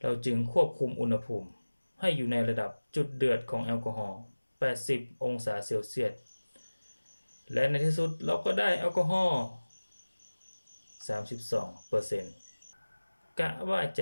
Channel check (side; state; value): both; inverted; correlation -1.00